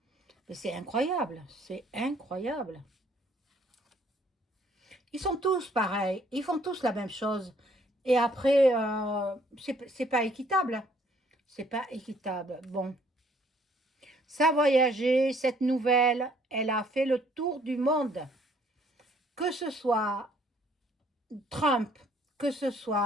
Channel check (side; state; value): both; normal; correlation 0.63